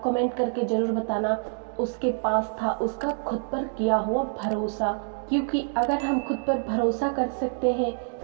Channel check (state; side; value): silent; left; digital silence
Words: कमेंट करके जरूर बताना। उसके पास था उसका खुद पर किया हुआ भरोसा। क्योंकि अगर हम खुद पर भरोसा कर सकते हैं